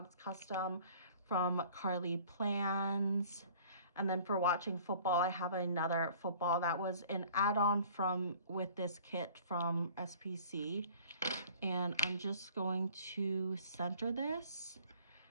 custom from Carly Plans. And then for watching football, I have another football that was an add-on from with this kit from SPC. And I'm just going to center this.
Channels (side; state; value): both; inverted; correlation -0.50